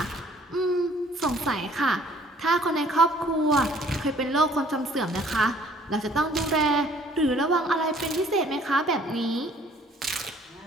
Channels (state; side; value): normal; both; correlation 0.57